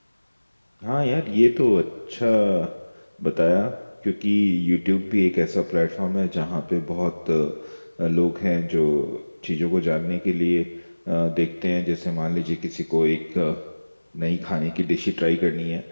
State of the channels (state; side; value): inverted; both; correlation -1.00